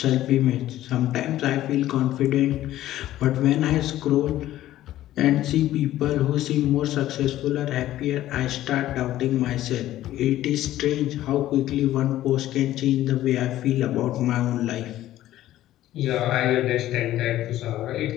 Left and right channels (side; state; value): right; quieter; 14.0 dB